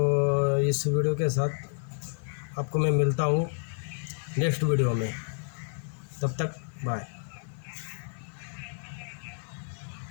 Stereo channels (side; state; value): right; silent; 58 dB below the other